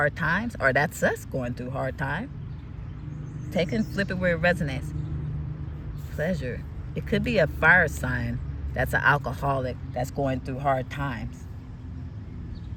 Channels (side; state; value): both; identical; correlation 1.00